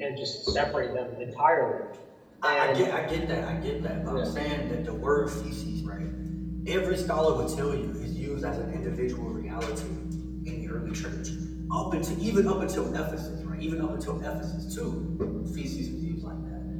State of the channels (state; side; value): identical; both; correlation 1.00